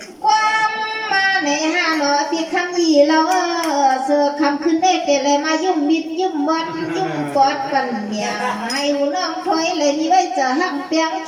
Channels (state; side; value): identical; both; correlation 1.00